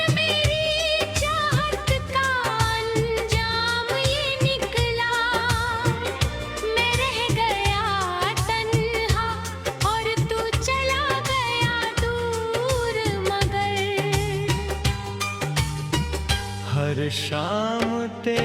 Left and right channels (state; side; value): identical; both; correlation 1.00